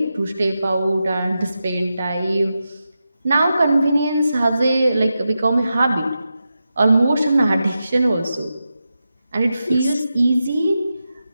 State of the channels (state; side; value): inverted; both; correlation -0.90